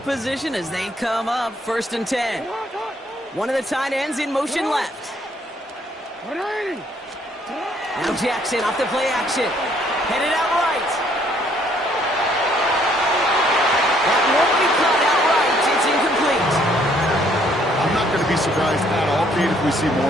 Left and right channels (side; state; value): both; normal; correlation 0.66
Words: position as they come up 1st and 10. One of the tight ends in motion left. Now Jackson off the play action. Headed out right. That won't be caught outright. It's incomplete. I'm not going to be surprised at all, Kate, if we see